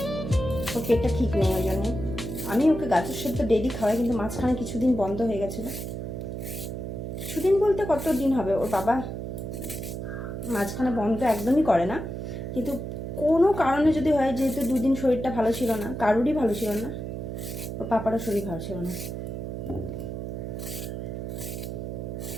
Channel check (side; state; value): right; noise; hum, 6 dB below the sound